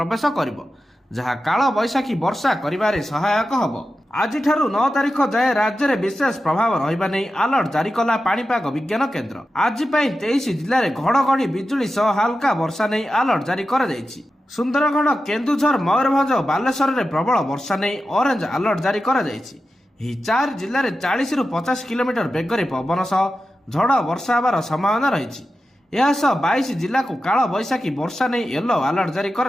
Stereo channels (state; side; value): normal; both; correlation 0.92